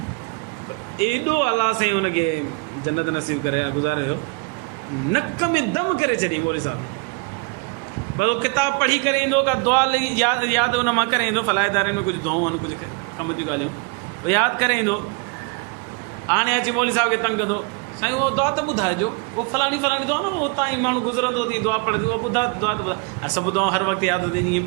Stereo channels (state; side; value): quieter; left; 31.2 dB